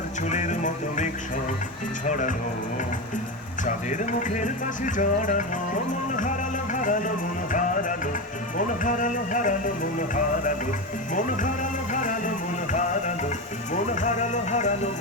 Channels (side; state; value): both; normal; correlation 0.18